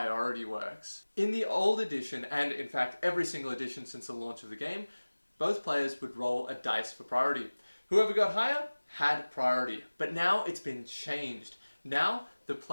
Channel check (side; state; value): both; inverted; correlation -1.00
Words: works. In the old edition, and in fact every single edition since the launch of the game, both players would roll a dice for priority. Whoever got higher had priority, but now it's been changed. Now the